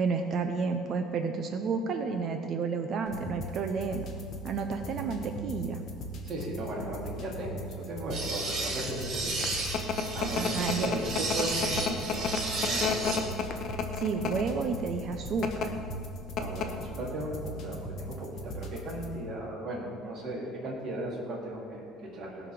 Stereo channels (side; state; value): both; normal; correlation 0.50